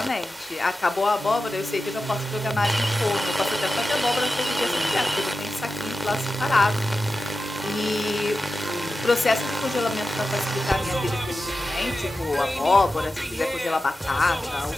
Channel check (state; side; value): normal; both; correlation 0.93